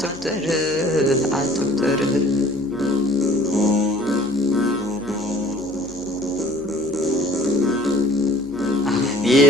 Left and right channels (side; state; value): left; noise; hum, 21 dB below the sound